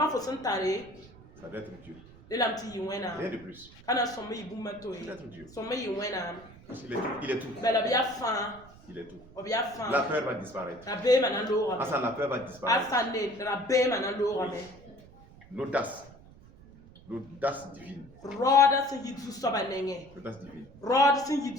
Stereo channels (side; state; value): right; noise; rumble, 22 dB below the sound